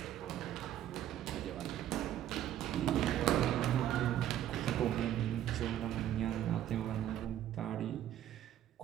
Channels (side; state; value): left; quieter; 11.7 dB